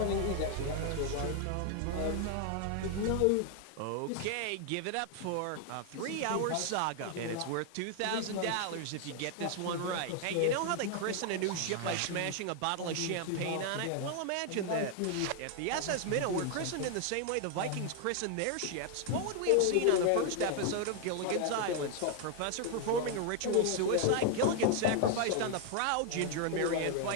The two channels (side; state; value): both; different; correlation 0.00